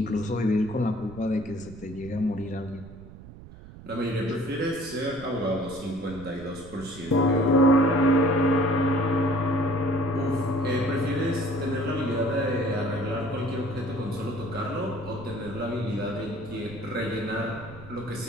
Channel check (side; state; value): right; noise; rumble, 17 dB below the sound